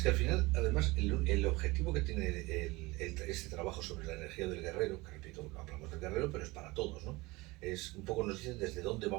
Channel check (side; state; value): left; quieter; 22.6 dB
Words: que al final, además, el objetivo que tiene este trabajo sobre la energía del guerrero, que repito, hablamos del guerrero, pero es para todos, ¿no? Es un poco, nos dicen desde dónde